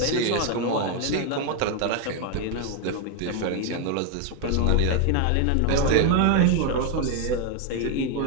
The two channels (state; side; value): different; both; correlation 0.01